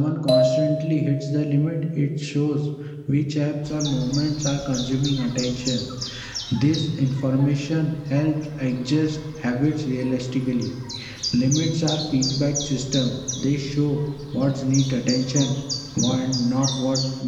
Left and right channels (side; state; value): both; identical; correlation 1.00